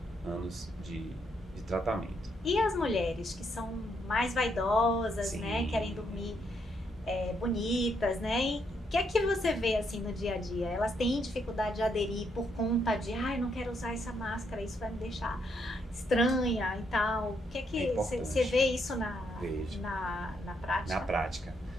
anos de tratamento. E as mulheres que são mais vaidosas, Sim. né? Querem dormir bonitas, né? E o que é que você vê assim no dia a dia? Elas têm dificuldade de aderir por conta de, eu não quero usar essa máscara, isso vai me deixar estranha e tal. O que é que você vê isso na prática? Na prática.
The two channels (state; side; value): normal; both; correlation 0.76